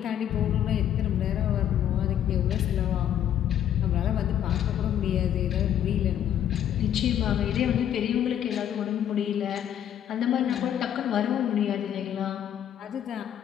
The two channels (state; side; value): quieter; right; 10.3 dB